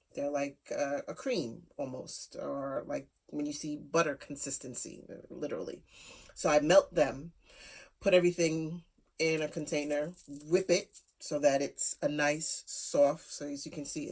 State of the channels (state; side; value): identical; both; correlation 1.00